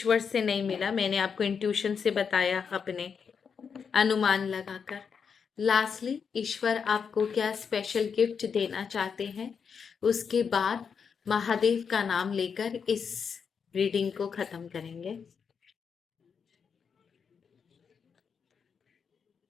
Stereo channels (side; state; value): right; quieter; 6.4 dB